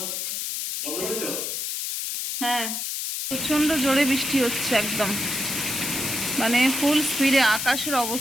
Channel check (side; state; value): left; noise; hiss, 3 dB below the sound